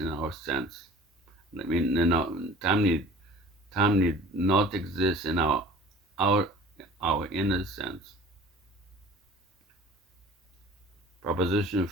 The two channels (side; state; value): both; normal; correlation 0.45